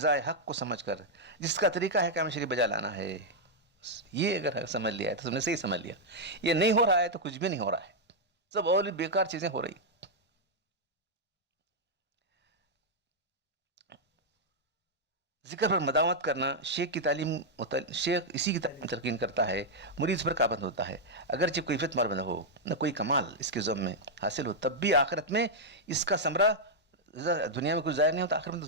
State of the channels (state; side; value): normal; both; correlation -0.04